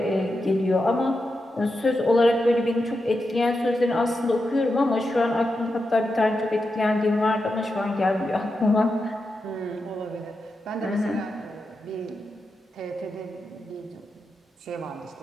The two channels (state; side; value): normal; both; correlation 0.88